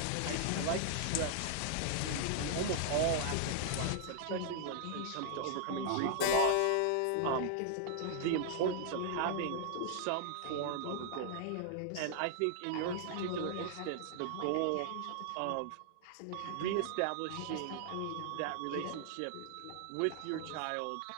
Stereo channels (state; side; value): different; both; correlation -0.01